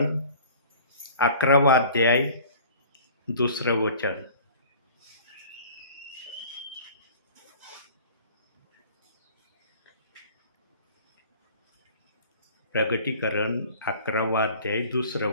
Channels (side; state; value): both; inverted; correlation -0.46